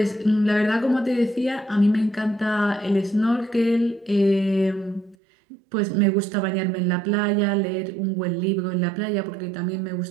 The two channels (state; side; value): drops out; left; at 5.2 s